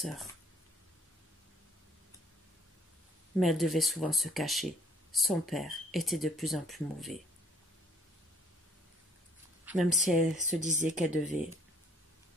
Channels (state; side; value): normal; both; correlation 0.62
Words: Mais elle devait souvent se cacher. Son père était de plus en plus mauvais. Même si elle se disait qu'elle devait